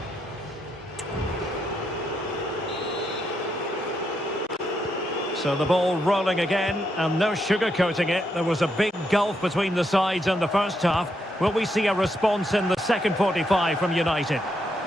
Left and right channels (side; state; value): both; normal; correlation 0.79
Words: So the ball rolling again, and no sugarcoating it. There was a big gulf between the sides in the first half. Will we see a response in the second 45 from United?